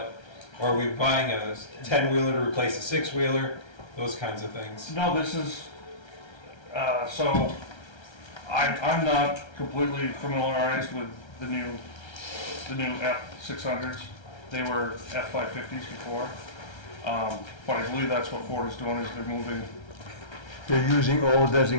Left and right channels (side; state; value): right; late; 1.3 ms